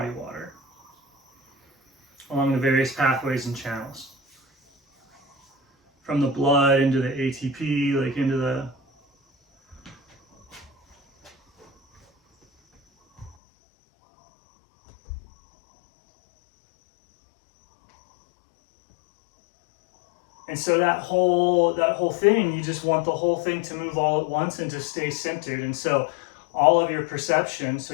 water along the various pathways and channels. From the blood into the ATP, like into the And so that whole thing, you just want the whole thing to move all at once and to stay centered. And so all of your perception, so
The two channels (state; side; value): drops out; right; at 13.4 s